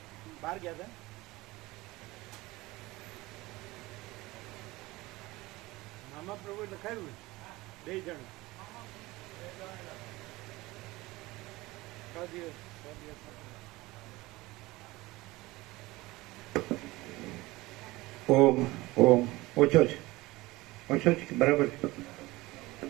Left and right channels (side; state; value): left; quieter; 20.3 dB